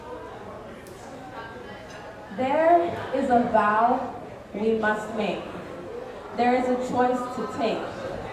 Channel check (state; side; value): identical; both; correlation 1.00